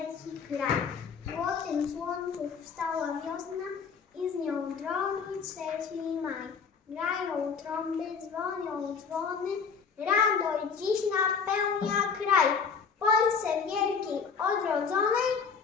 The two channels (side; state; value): right; quieter; 5.9 dB